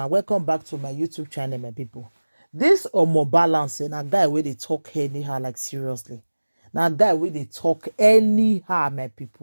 welcome back to my YouTube channel, my people. This Omo Balance na guy where they talk anyhow, like seriously. Now guy where they talk anyhow, my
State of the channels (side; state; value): both; inverted; correlation -1.00